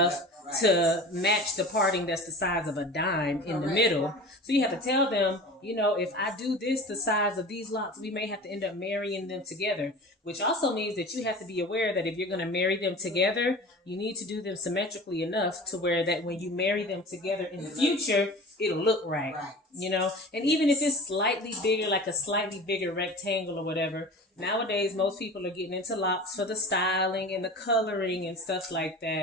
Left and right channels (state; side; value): normal; both; correlation 0.36